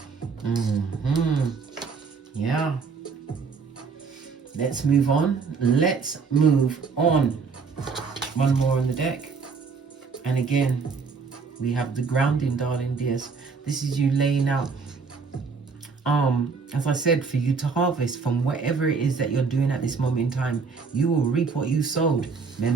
Yeah. Let's move on. Let's move on. One more on the deck. And again, we have the grounding, darling dears. This is you laying out, as I said, for you to harvest from whatever it is that you're doing at this moment in time. You will reap what you sowed.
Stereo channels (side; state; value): left; quieter; 5.1 dB